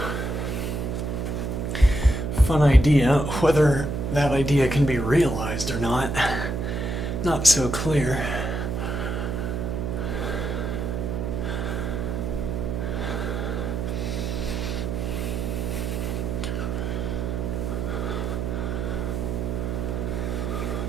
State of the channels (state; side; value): noise; right; hum, 2 dB below the sound